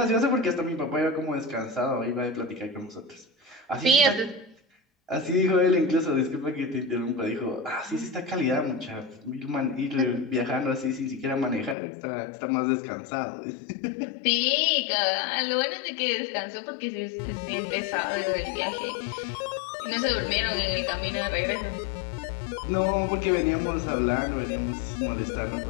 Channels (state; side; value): drops out; right; at 11.8 s